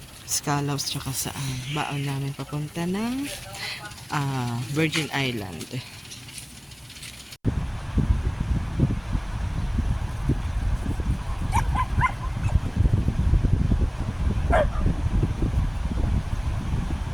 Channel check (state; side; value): identical; both; correlation 1.00